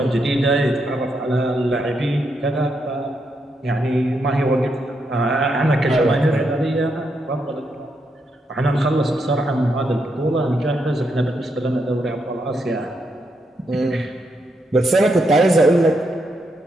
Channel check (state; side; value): normal; both; correlation 0.80